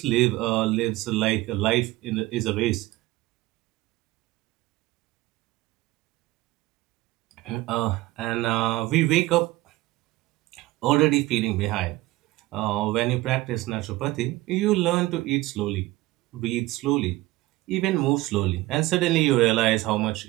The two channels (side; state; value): left; quieter; 18.8 dB